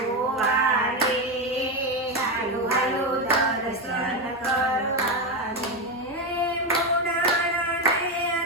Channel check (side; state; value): both; normal; correlation 0.12